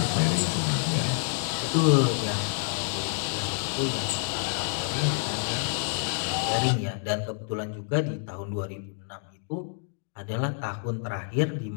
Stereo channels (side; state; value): right; silent; 59 dB below the other